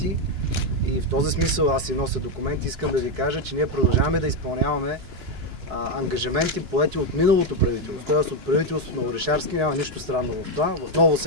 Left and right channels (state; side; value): late; left; 2.9 ms